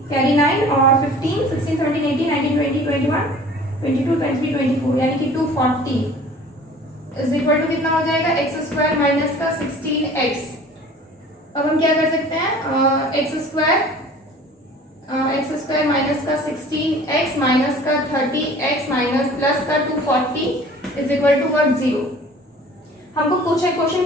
कैरी 9 और 15 16 17 18 19 20 21 22 23 24 यानी कि 240 इज इक्वल टू कितना हो जाएगा, एक्स स्क्वायर माइनस का 16x। अब हम क्या कर सकते हैं, एक्स स्क्वायर माइनस का 16x माइनस का 30x माइनस प्लस का 240 इज इक्वल टू व्हाट, 0। हमको कुछ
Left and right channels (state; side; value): normal; both; correlation 0.47